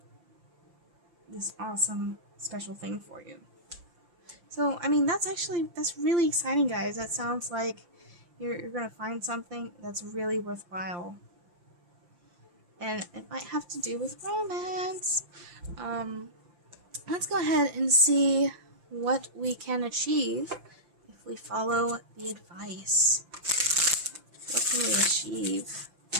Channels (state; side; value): late; left; 5.8 ms